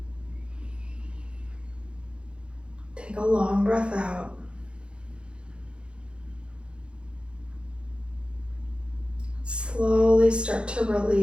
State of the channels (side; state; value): left; late; 0.056 ms